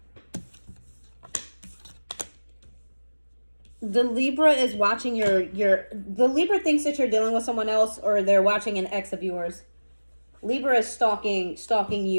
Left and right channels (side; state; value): both; inverted; correlation -1.00